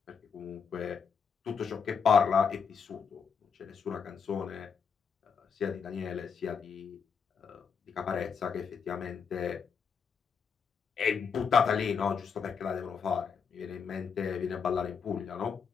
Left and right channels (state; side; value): quieter; right; 6.2 dB